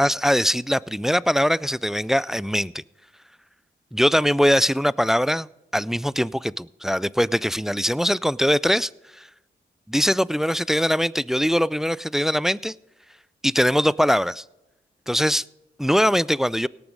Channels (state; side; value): normal; both; correlation 0.96